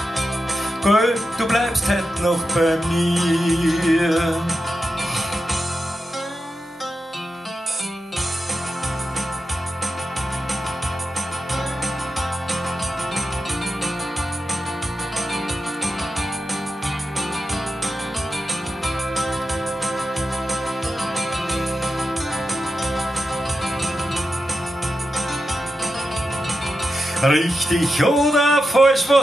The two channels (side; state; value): both; normal; correlation 0.89